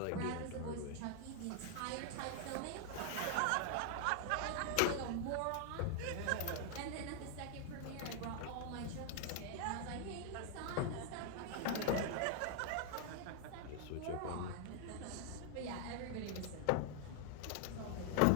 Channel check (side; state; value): both; different; correlation 0.00